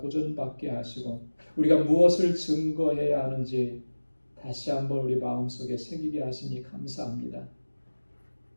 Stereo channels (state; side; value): inverted; both; correlation -1.00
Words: 하시고 우리가 무엇을 증거해야 하는지 다시 한번 우리 마음속에 새기게 하시니 감사합니다.